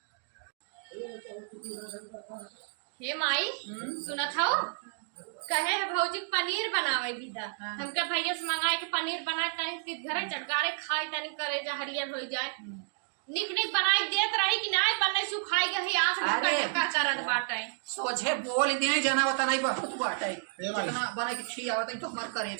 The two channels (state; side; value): silent; left; digital silence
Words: हे माई सुना था कहे है भौजी पनीर बनावे दीदा हमके भैया से मंगाए के पनीर बनाए तनी घरे चटकारे खाई तनी करे जा हरियर हो जाए निक निक बनाई देत रही कि नहीं बनने सुखाई गई आंख ढक्का अरे। ढक्का करत बाटे सोझे बोल दिए जना होता नहीं बहुत बाटे ए भाई। जितना बना के खी आवत है तो हमार